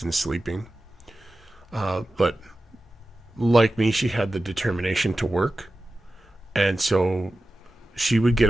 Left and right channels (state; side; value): normal; both; correlation 0.94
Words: and sleeping. But like me, she had the determination to work. And so she would get